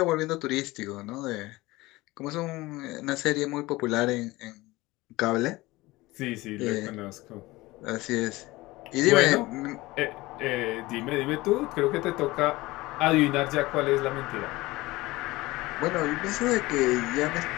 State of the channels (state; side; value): quieter; right; 20.0 dB